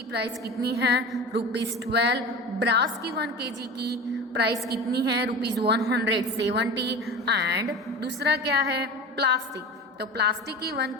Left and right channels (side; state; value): both; normal; correlation 0.32